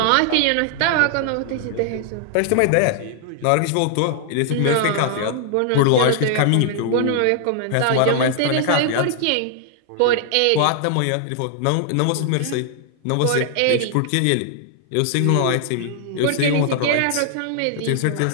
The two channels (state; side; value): different; both; correlation 0.00